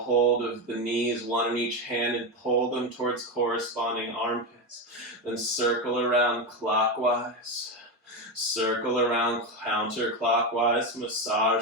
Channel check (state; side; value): normal; both; correlation 0.14